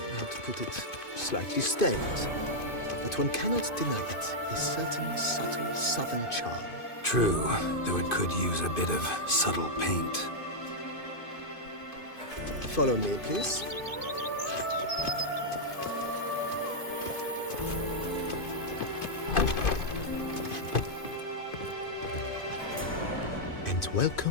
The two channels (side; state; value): right; late; 2.5 ms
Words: how to put it, slightly stained. But one cannot deny it, a certain subtle southern charm. True, though it could use a bit of subtle paint. Follow me, please. And